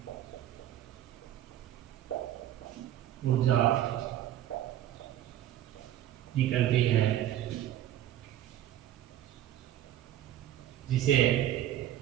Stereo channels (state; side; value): quieter; left; 12.1 dB